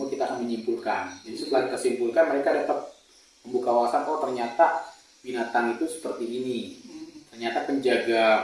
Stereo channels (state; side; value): identical; both; correlation 1.00